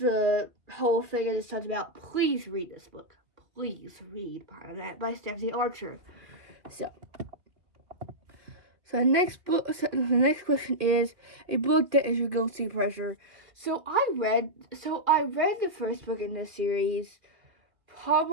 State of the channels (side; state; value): left; late; 2.3 ms